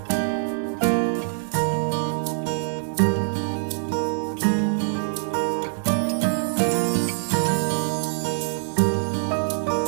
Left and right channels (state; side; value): silent; left; digital silence